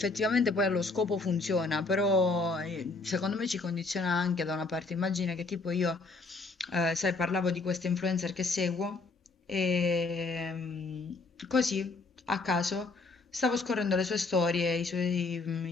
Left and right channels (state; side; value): quieter; right; 3.7 dB